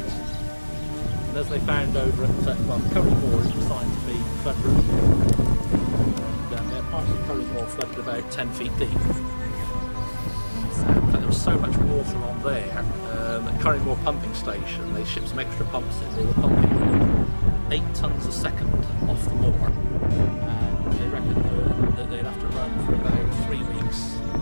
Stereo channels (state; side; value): inverted; both; correlation -1.00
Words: And as they found over at Curry Moor, it was designed to be flood-proof. And parts of Curry Moor flooded about 10 feet deep. But there was so much water on there at Curry Moor Pumping Station, they shipped some extra pumps in. They were pumping 8 tonnes a second off the moor. And they reckon that they'd have to run for about 3 weeks,